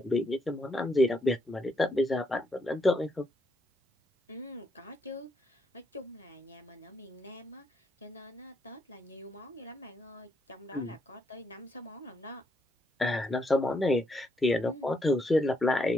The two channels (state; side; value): normal; both; correlation 0.76